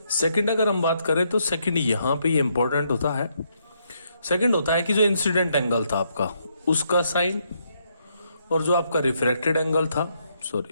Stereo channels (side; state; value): both; inverted; correlation -0.75